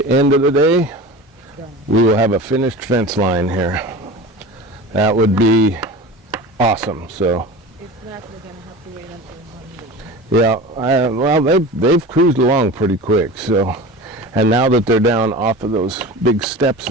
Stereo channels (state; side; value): normal; both; correlation 0.33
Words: end of the day, we will have a finished fence line here. That would be awesome. So If not, we're gonna have to wait until Monday. yeah, well they've cruised along pretty quick. So, and now that they're down off of those big steps